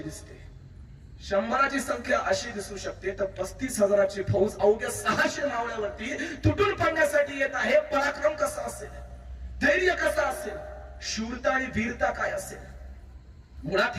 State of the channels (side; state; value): both; identical; correlation 1.00